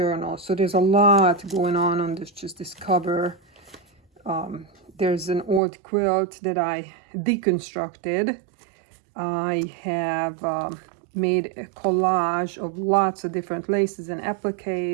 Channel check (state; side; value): drops out; left; at 5.6 s